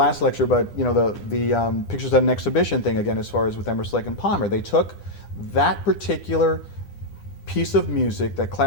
lecture, but the Pictures at an Exhibition thing, again, as far as with Emerson, Lake and Palmer, they took that particular piece of music, that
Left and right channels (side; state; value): right; late; 9.9 ms